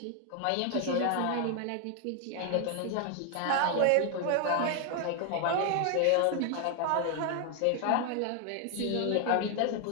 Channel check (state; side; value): different; both; correlation 0.00